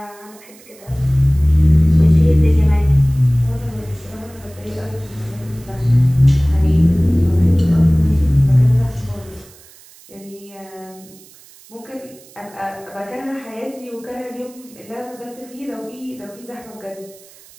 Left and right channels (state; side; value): noise; right; hiss, 24 dB below the sound